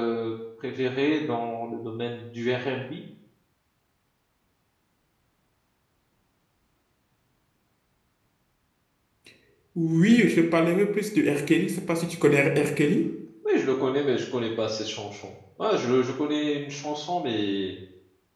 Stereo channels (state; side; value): identical; both; correlation 1.00